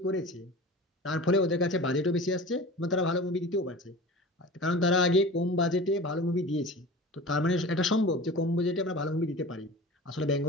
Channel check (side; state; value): both; normal; correlation 0.36